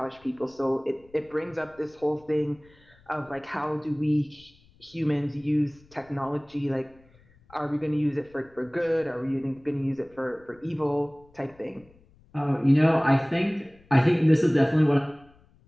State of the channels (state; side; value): noise; left; rumble, 29 dB below the sound